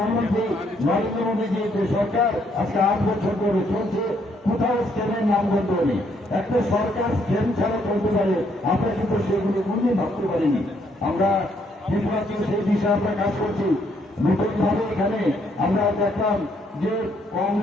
নরেন্দ্র মোদীজি যে সরকার আজকে 8 বছর ধরে চলছে কোথাও স্ক্যামের নামগন্ধ নেই। একটা সরকার স্ক্যাম ছাড়া চলতে পারে আমরা কিন্তু সেগুলি কোনদিন ভাবতে পারিনি। আমরা সেই বিষয়ে আমরা কাজ করছি। নতুনভাবে এখানে আমরা দেখলাম যে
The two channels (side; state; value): both; normal; correlation 0.71